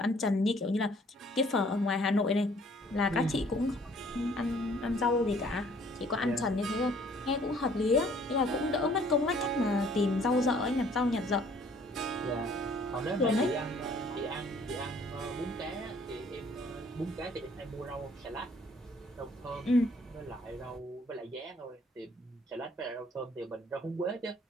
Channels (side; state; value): both; normal; correlation 0.59